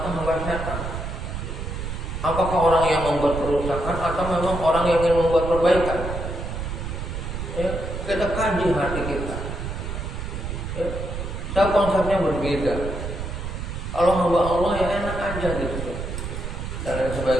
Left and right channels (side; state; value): right; noise; rumble, 5 dB below the sound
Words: hamba setan. Apakah orang yang membuat kerusakan atau memang orang yang ingin membuat perbaikan. Ya, kita kaji hati kita. Ya. Saya konsepnya berbeda. Kalau hamba Allah ya enak aja gitu dan lain